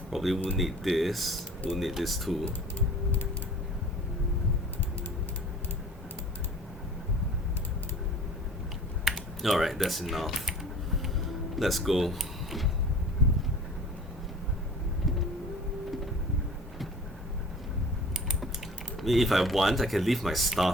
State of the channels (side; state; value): both; normal; correlation 0.44